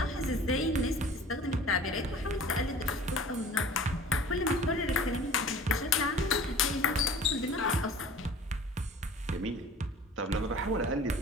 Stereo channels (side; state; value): both; normal; correlation 0.44